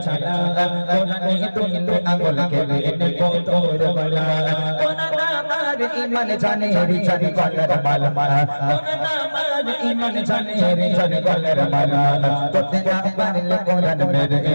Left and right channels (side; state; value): both; inverted; correlation -1.00